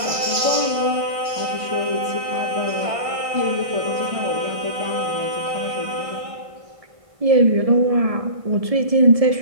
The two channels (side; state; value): left; late; 1.6 ms